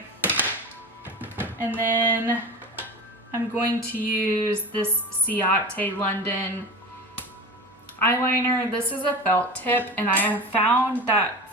And then I'm going to use this Ciate London eyeliner. This is a felt tip, and I have found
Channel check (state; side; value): normal; both; correlation 0.30